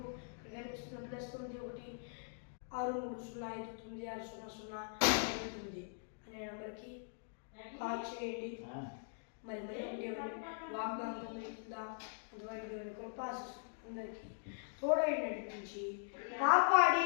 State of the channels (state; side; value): silent; right; digital silence